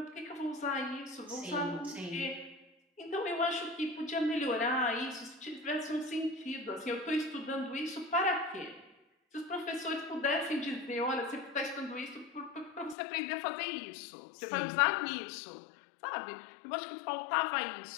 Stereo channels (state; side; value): drops out; right; at 13.0 s